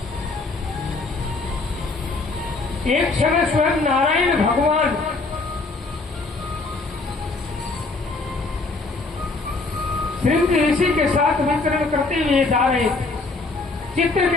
एक समय स्वयं नारायण भगवान श्रृंग ऋषि के साथ विचरण करते हुए जा रहे थे।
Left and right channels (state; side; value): quieter; right; 3.6 dB